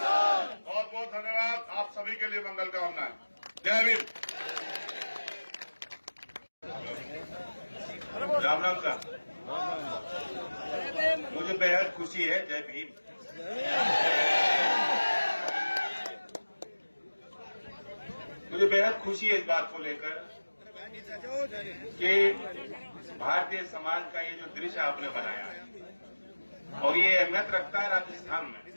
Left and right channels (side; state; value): both; inverted; correlation -1.00